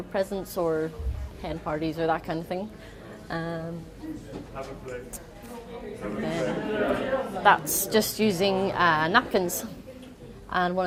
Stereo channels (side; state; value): both; identical; correlation 1.00